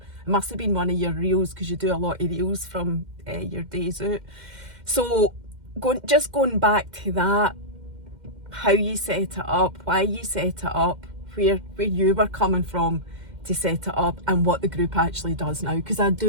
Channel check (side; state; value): left; late; 2.1 ms